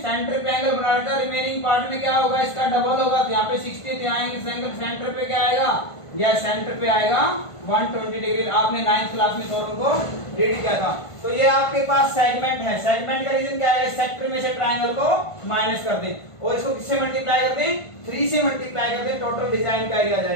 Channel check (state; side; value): late; right; 1.5 ms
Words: सेंटर पे एंगल बना रखा, रिमेनिंग पार्ट में क्या होगा, इसका डबल होगा, तो यहाँ पे 60, यहाँ एंगल सेंटर पे क्या आएगा, या सेंटर पे आएगा 120 डिग्री। आपने 9th क्लास में थोरों को रीड किया था। तो ये आपके पास सेगमेंट है, सेगमेंट का रीजन क्या है, सेक्टर में से ट्रायंगल को माइनस कर दें और इसको किससे मल्टीप्लाई कर दें, 3 से मल्टीप्लाई कर दें, टोटल डिजाइन का एरिया आ